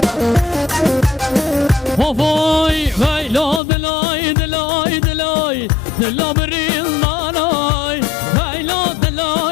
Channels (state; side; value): drops out; right; at 3.6 s